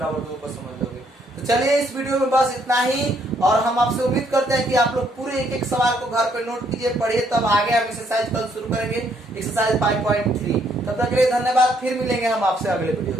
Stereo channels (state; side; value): normal; both; correlation 0.70